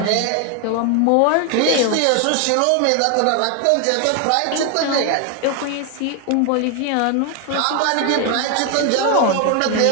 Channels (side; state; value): both; different; correlation 0.01